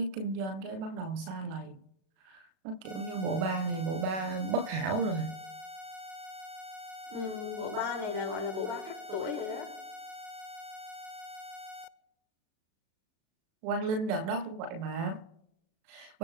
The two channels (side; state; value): left; late; 37 ms